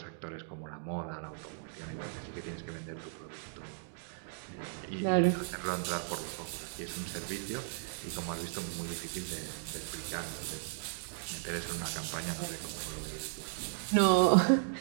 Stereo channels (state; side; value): silent; left; digital silence